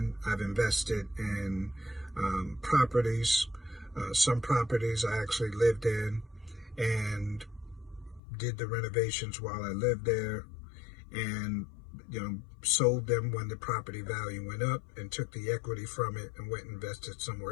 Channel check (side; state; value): right; drops out; at 8.2 s